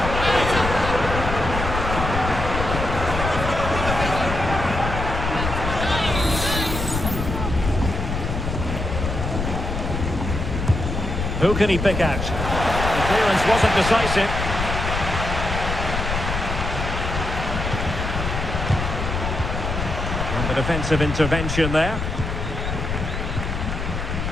Who can he pick out? The clearance wasn't decisive. And the defensive intervention there.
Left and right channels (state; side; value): noise; left; rumble, 3 dB below the sound